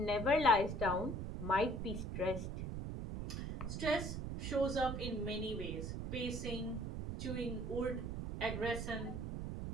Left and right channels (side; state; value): right; noise; rumble, 4 dB below the sound